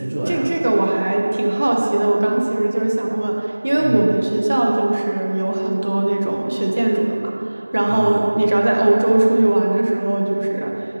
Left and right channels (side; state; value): both; inverted; correlation -1.00